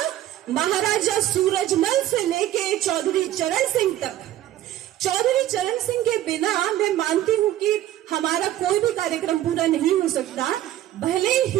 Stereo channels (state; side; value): quieter; left; 13.2 dB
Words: महाराजा सूरजमल से लेके चौधरी चरण सिंह तक। चौधरी चरण सिंह के बिना मैं मानती हूँ कि हमारा कोई भी कार्यक्रम पूरा नहीं हो सकता। भले